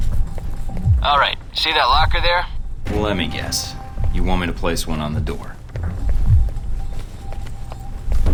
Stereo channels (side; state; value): both; identical; correlation 1.00